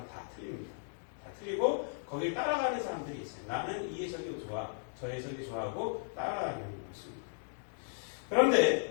다 틀립니다. 다 틀리고 거길 따라가는 사람들이 있어요. 나는 이 해석이 좋아, 저 해석이 좋아하고 따라가는 것입니다.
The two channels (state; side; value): silent; right; digital silence